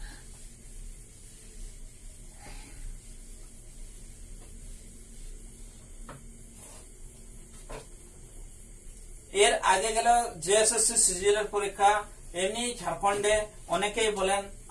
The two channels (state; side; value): identical; both; correlation 1.00